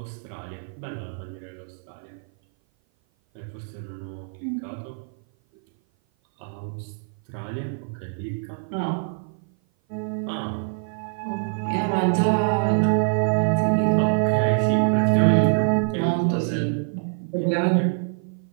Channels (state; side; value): silent; left; 56 dB below the other